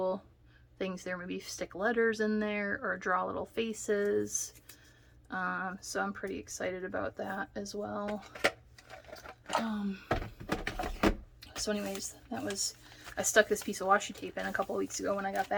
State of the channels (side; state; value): both; identical; correlation 1.00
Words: things there. Maybe stick letters in there or draw little faces. So I'm pretty excited about that as well. So anyways, I stuck this piece of washi tape in a couple weeks ago when I got